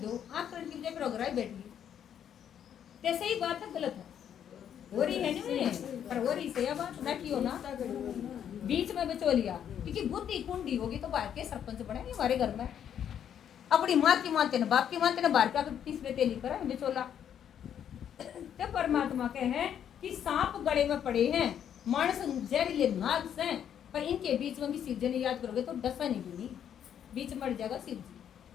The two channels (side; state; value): right; quieter; 9.2 dB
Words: आँख करने की वजह पर बैठ गई। जैसे ही बात है गलत है, हो रही है नहीं, पर हो रही से बात ना की हो ना, बीच में बचो लिया, क्योंकि बुद्धि कुंडी होगी तो बाहर के सरपंच बनेंगे हमारे घर में। अपनी माँ की मानते ना, बाप की मानते ना, बाहर का तीसरे तेली करा बिचोला। तो परमात्मा के हैं कि सांप गले में पड़े हैं, मानस जहरीले नाग से, पर इनके बीच में भी शिव जी ने याद करोगे तो डसा नहीं भी नहीं, बीच मर जाएगा शिव